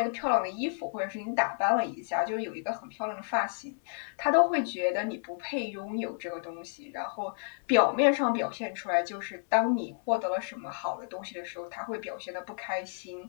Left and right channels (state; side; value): silent; right; 57 dB below the other